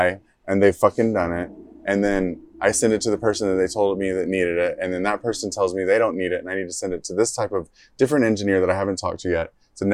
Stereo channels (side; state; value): both; identical; correlation 1.00